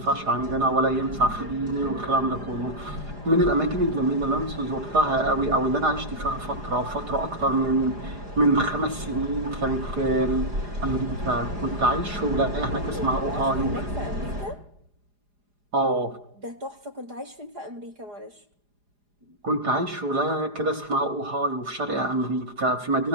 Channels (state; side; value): late; left; 4.9 ms